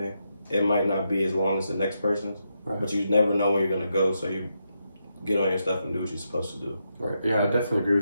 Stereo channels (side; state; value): both; inverted; correlation -0.83